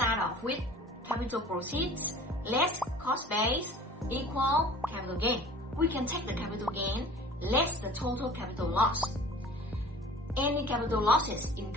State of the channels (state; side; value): normal; both; correlation 0.45